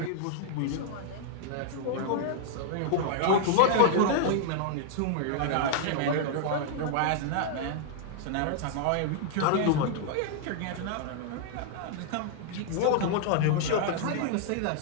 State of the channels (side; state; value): both; different; correlation -0.01